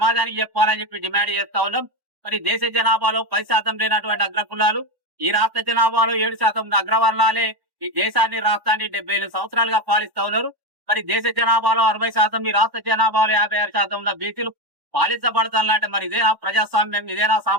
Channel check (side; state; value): left; late; 1.1 ms